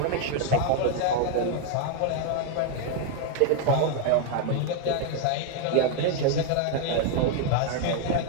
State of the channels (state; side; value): different; both; correlation 0.00